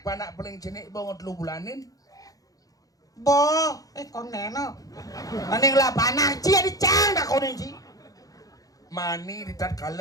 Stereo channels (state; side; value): late; right; 0.17 ms